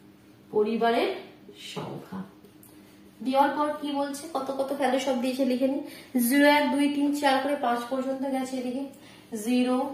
পরিবারের সংখ্যা দেওয়ার পর কি বলছে, কত কত ভ্যালু সব দিয়েছে লিখে নি। 0 1 2 3 4 করে 5 পর্যন্ত গেছে। এদিকে 0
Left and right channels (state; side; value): identical; both; correlation 1.00